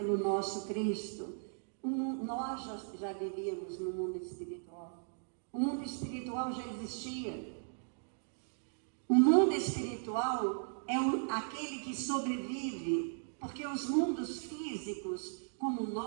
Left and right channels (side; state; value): left; silent; digital silence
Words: nosso Cristo. Nós já vivíamos no mundo espiritual. O mundo espiritual já existia. O mundo espiritual é aquele que sobrevive, porque os mundos físicos, como